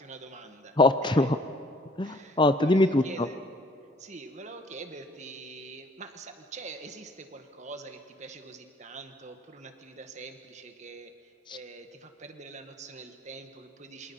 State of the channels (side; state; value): both; normal; correlation 0.57